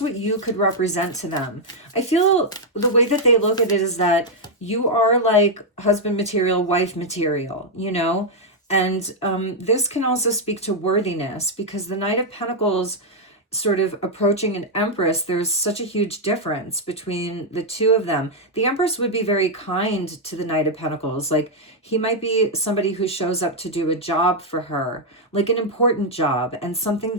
you could represent to them. I feel the way that they look at it is that you are like husband material, wife material, you know? And this can also speak to worthiness because the Knight of Pentacles sort of approaching an Empress, there's such a huge difference between the two of them. The Empress would be very kind to the Knight of Pentacles. Like he might be somebody who shows up to do a job for her, like an important job and something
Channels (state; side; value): normal; both; correlation -0.01